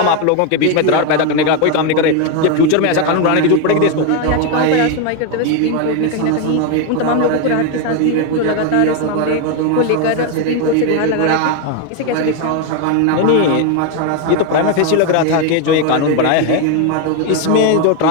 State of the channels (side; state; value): both; different; correlation 0.01